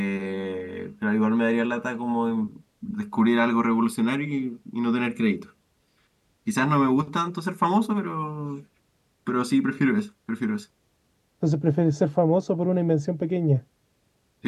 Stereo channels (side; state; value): both; identical; correlation 1.00